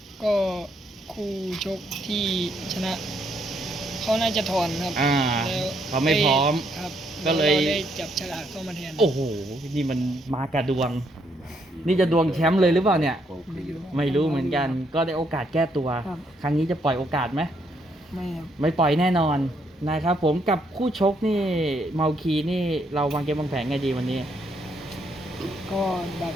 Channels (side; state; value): both; normal; correlation 0.73